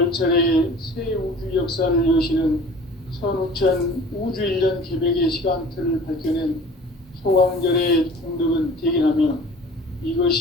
새 우주 역사를 여시는 선우천 우주 1년 개벽의 시간틀을 밝혀낸 소강절의 공덕은 대견하며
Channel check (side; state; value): both; normal; correlation 0.45